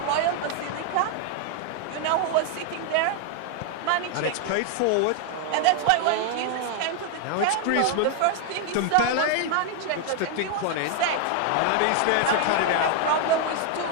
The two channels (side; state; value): both; different; correlation 0.00